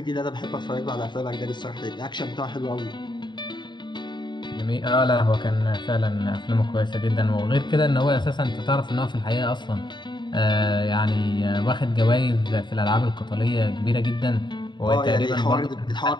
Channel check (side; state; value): right; late; 0.22 ms